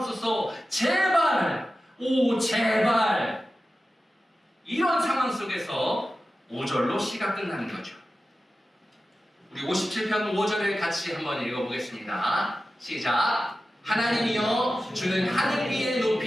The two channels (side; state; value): both; normal; correlation 0.94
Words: 제발, 오 제발. 이런 상황 속에서 5절로 시가 끝나는 거죠. 우리 57편 5절을 같이 한번 읽어보겠습니다. 시작. 하나님이여, 주는 하늘 위에